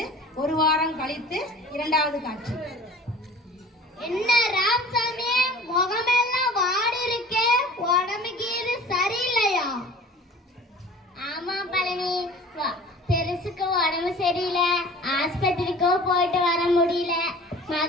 ஒரு வாரம் கழித்து இரண்டாவது காட்சி. என்ன ராமசாமி, முகமெல்லாம் வாடி இருக்கே, உடம்புக்கு இது சரியில்லையா? ஆமா பழனி, பெருசுக்கு உடம்பு சரியில்லை. ஆஸ்பத்திரிக்கோ போயிட்டு வர முடியல.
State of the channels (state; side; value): normal; both; correlation 0.44